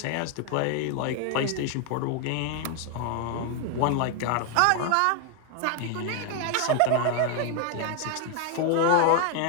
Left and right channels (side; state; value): both; different; correlation 0.01